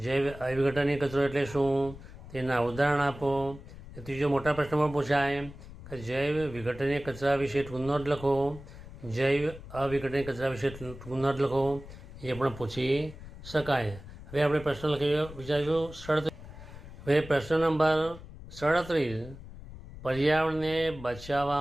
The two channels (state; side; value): noise; left; rumble, 15 dB below the sound